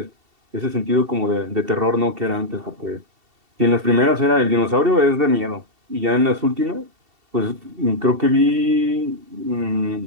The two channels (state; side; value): late; left; 2.7 ms